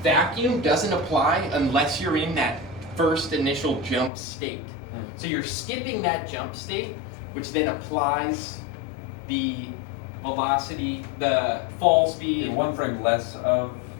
vacuum doesn't apply unless you're in that first initial jump state. So you're skipping that jump state, which then applies the velocity, the fall speed. In one frame less of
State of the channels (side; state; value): right; drops out; at 4.1 s